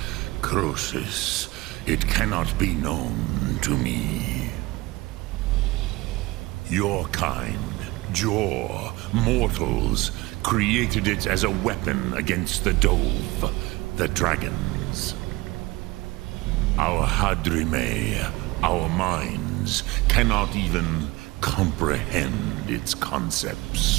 Croesus, it cannot be known to me. Your kind, Jor, mortals, created it as a weapon against the Dove, the dragons. Our Hadrime, our minds, cannot even comprehend its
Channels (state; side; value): quieter; left; 21.4 dB